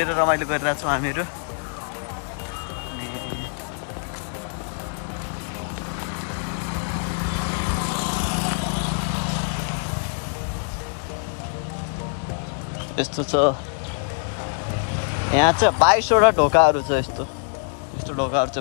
रमाइलो गरिरहेको छौँ हामीहरू। यस्तो छ। यहाँ चाहिँ 22वटा ढोकाहरू छ। यस्तो ढोकाहरू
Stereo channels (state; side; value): silent; right; 56 dB below the other